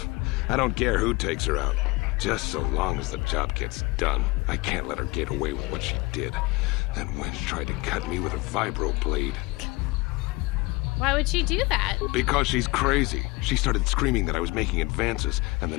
I don't care who takes her out. Just so long as the job gets done. I can't let her get away with what she did. That wench tried to cut me with a vibro blade. Why would she do that? Because she's crazy. She started screaming that I was making advances, and the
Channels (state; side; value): quieter; right; 23.9 dB